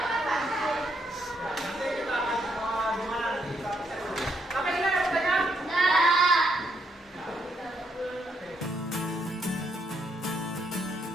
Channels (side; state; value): both; normal; correlation 0.75